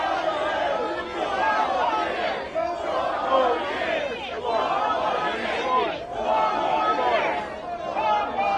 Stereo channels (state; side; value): identical; both; correlation 1.00